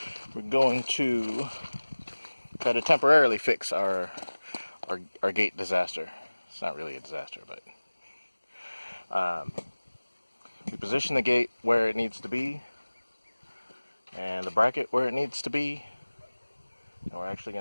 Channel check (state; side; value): inverted; both; correlation -1.00